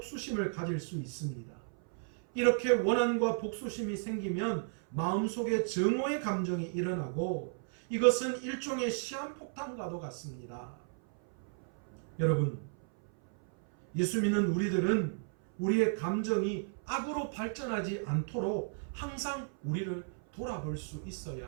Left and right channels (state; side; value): silent; left; 55 dB below the other